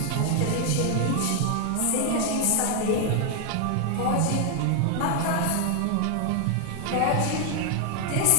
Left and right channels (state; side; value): different; both; correlation 0.00